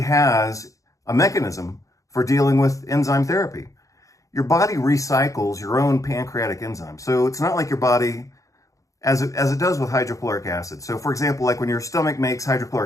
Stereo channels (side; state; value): right; late; 0.16 ms